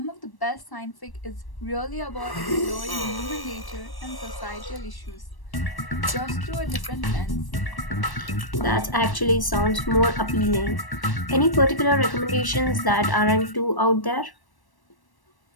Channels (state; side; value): late; right; 1.1 ms